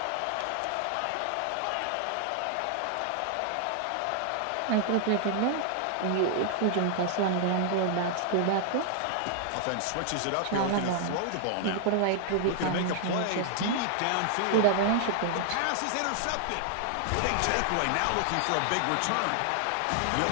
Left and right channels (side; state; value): both; different; correlation 0.00